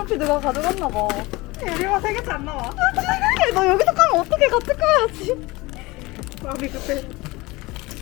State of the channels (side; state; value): right; quieter; 22.1 dB